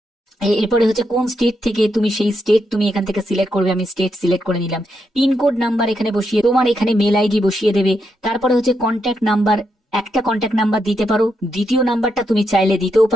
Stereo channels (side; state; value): both; normal; correlation 0.81